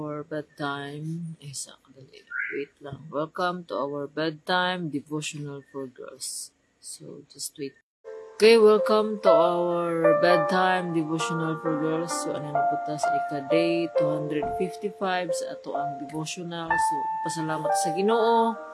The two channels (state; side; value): identical; both; correlation 1.00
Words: bedtime. Wait lang. Welcome to our bedtime devotional for girls. So, just wait. Okay, welcome to our bedtime devotional for girls. So, ano na po ta sa ika-day 255 sa ato ang devotional. So, pasalamat sa Ginoo.